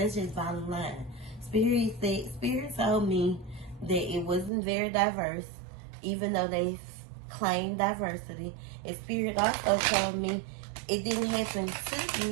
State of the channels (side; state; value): left; drops out; at 4.5 s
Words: bottom line. Spirit told me that it wasn't very diverse, even though they claimed diversity. And Spirit also told me it didn't happen to